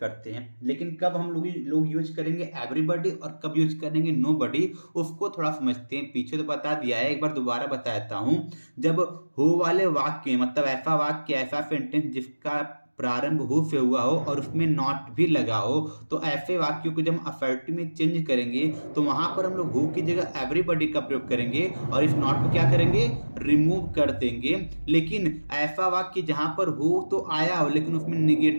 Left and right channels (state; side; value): inverted; both; correlation -1.00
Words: हैं। लेकिन कब हम लोग यूज करेंगे एवरीबॉडी और कब यूज करेंगे नोबॉडी, उसको थोड़ा समझते हैं। पीछे तो बता दिया है, एक बार दोबारा बता देता हूं। जब हु वाले वाक्य, मतलब ऐसा वाक्य, ऐसा सेंटेंस जिसका प्रारंभ हु से हुआ हो और उसमें नॉट भी लगा हो, तो ऐसे वाक्यों को जब असर्टिव में चेंज करेंगे तो वहां पर हम लोग हु की जगह एवरीबॉडी का प्रयोग करेंगे और इस नॉट को क्या करेंगे, रिमूव कर देंगे। लेकिन ऐसा वाक्य जहां पर हु तो आया हो लेकिन उसमें